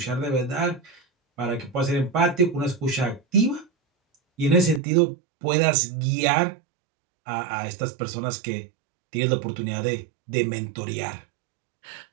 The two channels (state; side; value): drops out; left; at 4.8 s